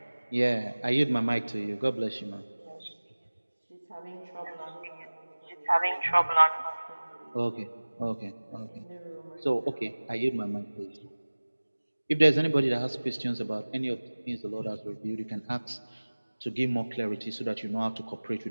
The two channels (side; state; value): both; inverted; correlation -1.00